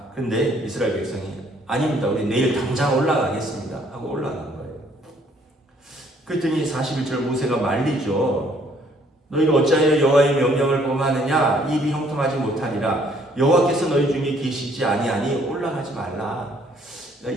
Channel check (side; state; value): both; normal; correlation 0.63